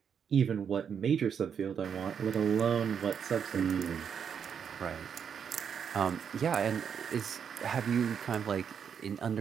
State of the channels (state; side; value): quieter; left; 7.4 dB